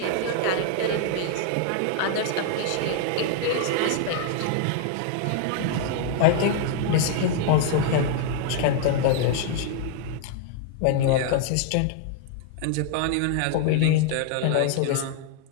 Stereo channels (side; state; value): both; different; correlation 0.00